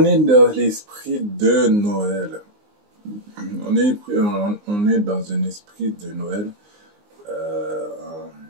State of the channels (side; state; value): left; late; 19 ms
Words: est dans l'esprit de Noël. On est dans un esprit de Noël, euh,